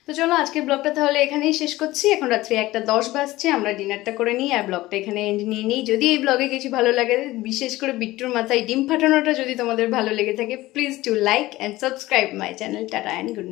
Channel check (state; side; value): quieter; right; 17.7 dB